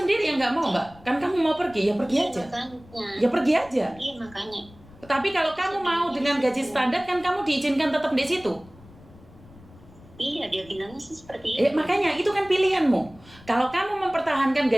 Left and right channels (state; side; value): noise; left; rumble, 23 dB below the sound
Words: yang nggak mau, Mbak. Kan kamu mau pergi, ya pergi aja. Makanya. Ya pergi aja. Iya, makanya. Tapi kalau kamu mau dengan gaji standar kan kamu diizinkan tetap di situ. Iya, dia bilangnya sih seperti itu. Makanya itu kan pilihanmu. Kalau kamu mempertahankan